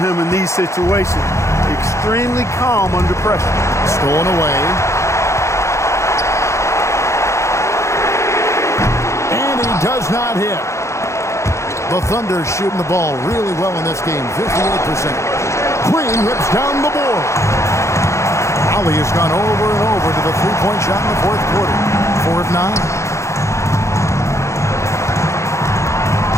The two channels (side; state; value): right; late; 0.14 ms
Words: in these situations. Extremely calm under pressure. Stolen away. And he does not hit. The Thunder shooting the ball really well in this game, 58%. Green rips down the board. Raleigh has gone over and over to the three-point shot in the fourth quarter. 4 of 9.